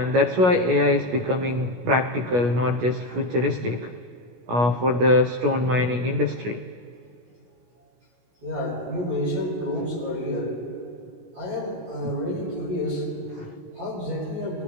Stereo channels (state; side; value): late; left; 16 ms